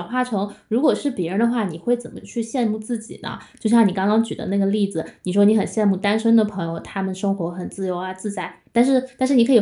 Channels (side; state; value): both; identical; correlation 1.00